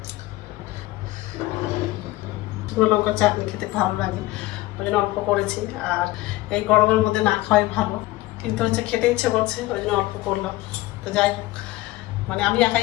শুকনো লঙ্কা চাটনি খেতে ভালো লাগে, ওই জন্য অল্প করেছি। আর এই গরমের মধ্যে না খাওয়াই ভালো, কিন্তু হচ্ছে খেতে ইচ্ছে করছে, ওই জন্য অল্প করলাম। তো যাই হোক, মানে আমি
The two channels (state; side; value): quieter; right; 18.3 dB